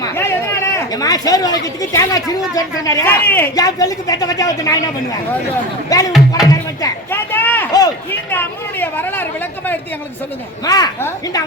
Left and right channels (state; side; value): normal; both; correlation 0.28